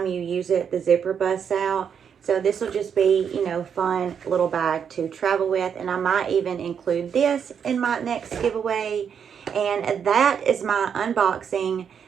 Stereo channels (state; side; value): quieter; left; 7.5 dB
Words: you use it, the zipper busts out. So this will just be, you know, fun little bag to travel with. And I might even include this in my next giveaway. And that is my unboxing